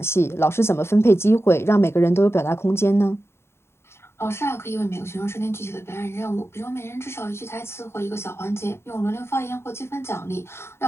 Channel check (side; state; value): right; late; 0.12 ms